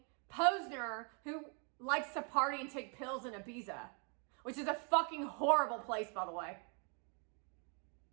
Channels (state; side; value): quieter; left; 38.5 dB